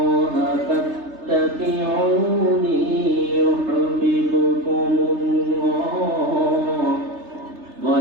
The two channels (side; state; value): left; late; 3.3 ms